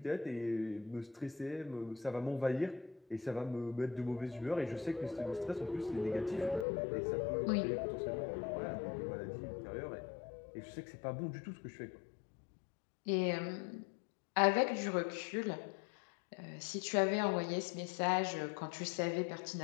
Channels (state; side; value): drops out; right; at 6.7 s